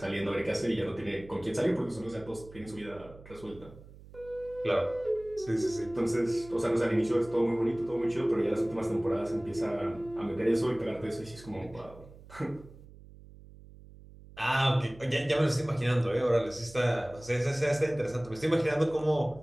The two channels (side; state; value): right; noise; hum, 20 dB below the sound